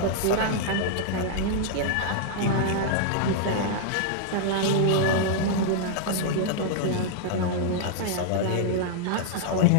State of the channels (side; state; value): both; different; correlation -0.01